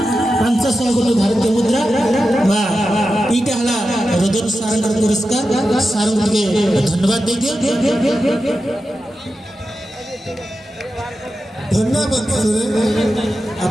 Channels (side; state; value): both; normal; correlation 0.91